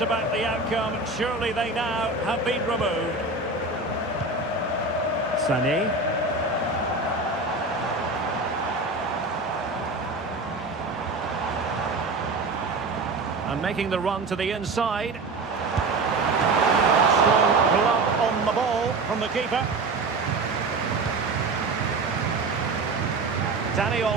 the outcome, surely they now have been removed. Sané. And making the run to the inside. Strong glove on the ball from the keeper. Dani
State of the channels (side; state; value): left; quieter; 3.4 dB